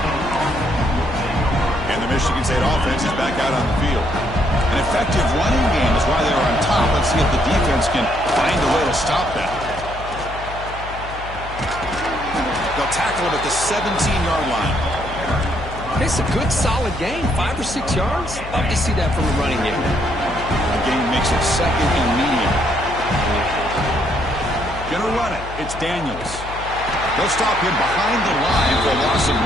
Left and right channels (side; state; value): left; noise; hum, 12 dB below the sound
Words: And the Michigan State offense is back out on the field. An effective running game is why they're on top. Let's see if the defense can find a way to stop that. They'll tackle him at the 17-yard line. It's a good, solid game. 5 or 6 yards. Love to see that from the running game. The game makes it second and medium. Gonna run it. It's Daniels. They'll stop him behind the line for a loss of